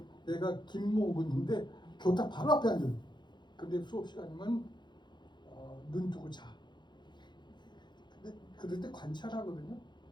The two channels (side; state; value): right; late; 0.22 ms